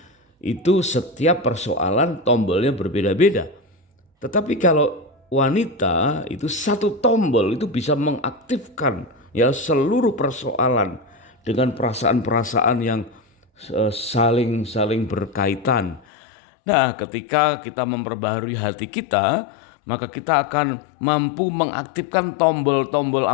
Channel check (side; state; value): right; drops out; at 16.1 s